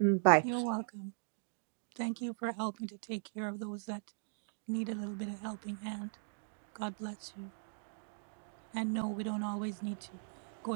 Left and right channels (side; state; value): left; silent; digital silence